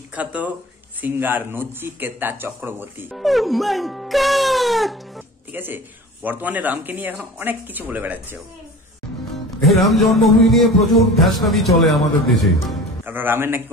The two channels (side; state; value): both; normal; correlation 0.38